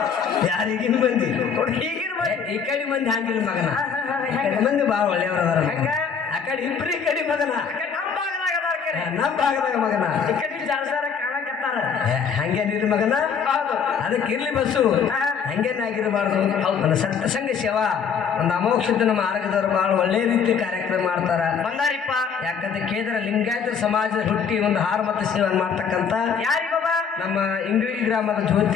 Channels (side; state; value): right; quieter; 6.6 dB